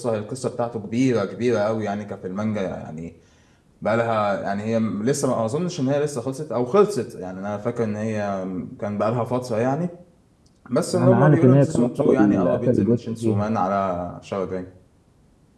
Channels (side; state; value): both; identical; correlation 1.00